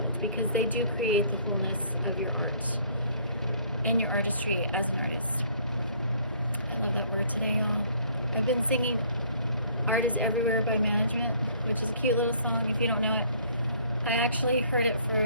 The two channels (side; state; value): both; inverted; correlation -0.59